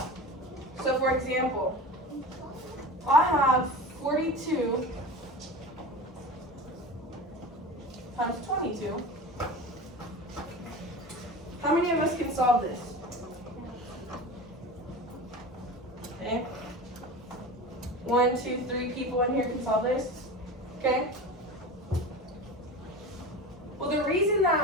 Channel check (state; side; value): normal; both; correlation 0.32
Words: So for example, I have 42 times 22. How many of us can solve this? Okay. 1, 2, 3 people in here can solve this. Okay. Well, the reason